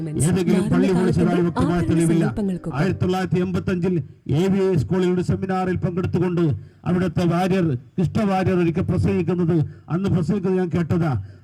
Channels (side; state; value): both; identical; correlation 1.00